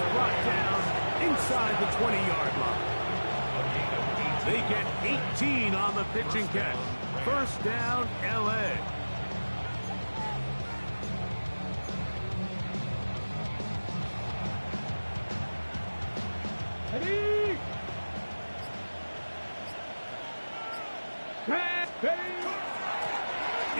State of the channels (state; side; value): inverted; both; correlation -1.00